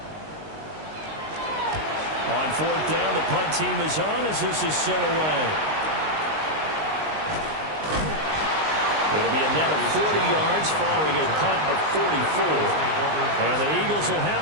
On 4th down, the punt team is on as this is sent away. It'll be a net of 40 yards following a punt of 44. And the Eagles will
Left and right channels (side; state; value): left; late; 19 ms